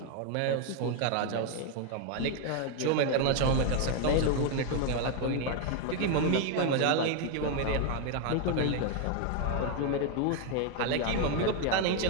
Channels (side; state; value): both; different; correlation 0.01